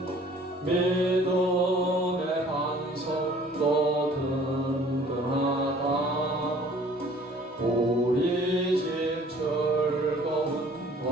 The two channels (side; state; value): both; normal; correlation 0.53